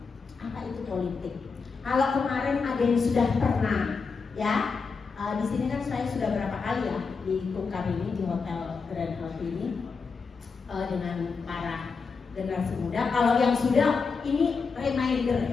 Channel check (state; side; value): quieter; right; 5.0 dB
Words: apa itu politik. Kalau kemarin ada yang sudah pernah, ya, di sini kan saya sudah berapa kali ya di Tukar ini, di Hotel Grand Hotel ini dengan para generasi muda. Kalau yang sudah, ini reminder